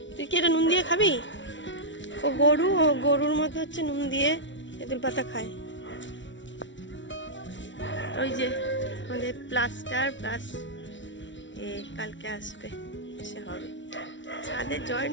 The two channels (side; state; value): right; late; 0.55 ms